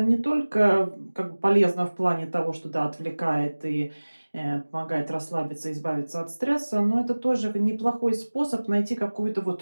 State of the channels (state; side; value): inverted; both; correlation -1.00